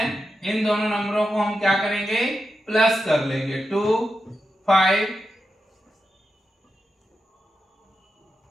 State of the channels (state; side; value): normal; both; correlation 0.88